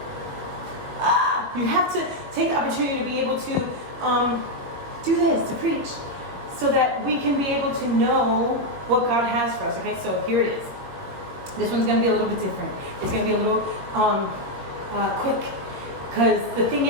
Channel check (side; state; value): left; late; 22 ms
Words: You have to take the opportunity to be able to do this, to preach, so that we can be able to know what God has for us. Okay, so here it is. This one's going to be a little bit different. It's going to be a little quick, because the thing